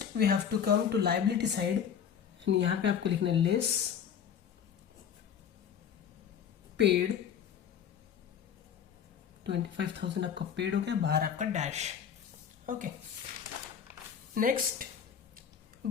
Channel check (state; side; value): quieter; right; 8.1 dB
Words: we have to come to liability side and यहाँ पे आपको लिखना है लेस पेड. 25,000 आपका पेड हो गया, बाहर आपका dash. Okay. Next,